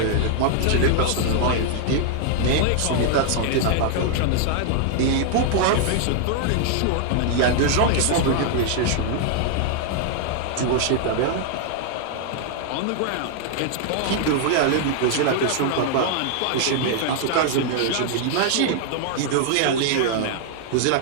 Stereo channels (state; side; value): different; both; correlation 0.00